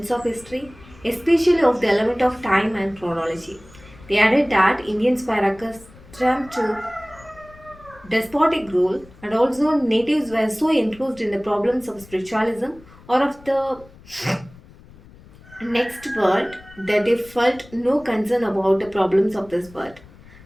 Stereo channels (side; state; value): left; noise; rumble, 23 dB below the sound